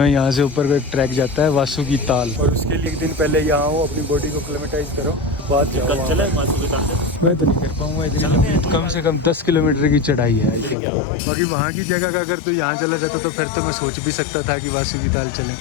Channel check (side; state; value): right; drops out; at 10.8 s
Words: हैं, यहाँ से ऊपर को एक ट्रैक जाता है वासुकी ताल। और उसके लिए एक दिन पहले यहाँ आओ, अपनी बॉडी को क्लेमेटाइज करो, बाद जाओ। मैं तो नहीं कर पाऊंगा इतनी, कम से कम 10 किलोमीटर की चढ़ाई है। बाकी वहाँ की जगह का अगर तो यहाँ चला जाता तो फिर तो मैं सोच भी सकता था कि वासुकी ताल चलें,